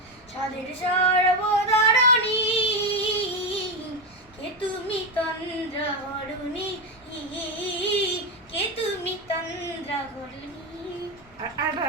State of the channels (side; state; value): both; normal; correlation 0.11